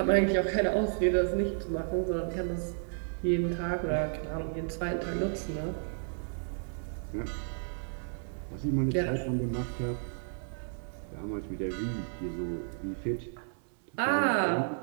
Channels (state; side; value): silent; left; digital silence